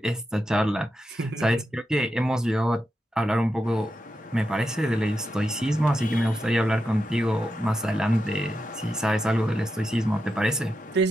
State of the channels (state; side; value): normal; both; correlation 0.88